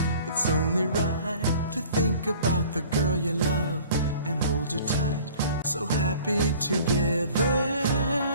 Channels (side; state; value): both; inverted; correlation -0.48